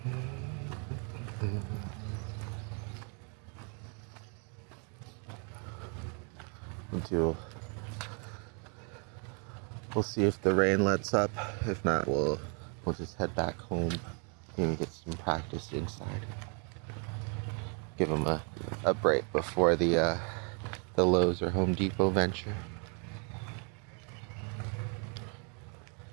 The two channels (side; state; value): left; quieter; 38.0 dB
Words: We'll see if the rain lets up. If not, we'll just head back home and get some practice inside. Give him a break before the Lowe's or Home Depot venture.